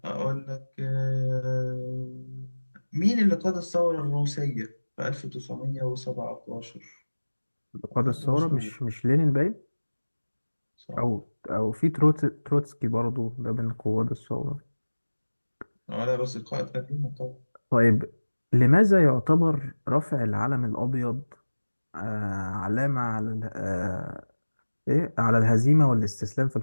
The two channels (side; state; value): both; inverted; correlation -1.00